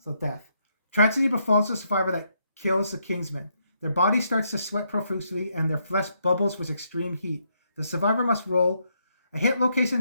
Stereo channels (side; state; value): both; inverted; correlation -0.76